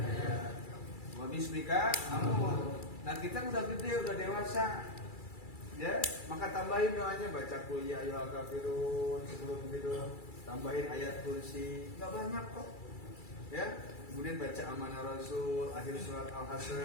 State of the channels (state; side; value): late; right; 2.3 ms